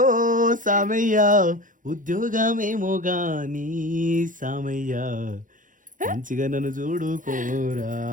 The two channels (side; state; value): left; late; 0.38 ms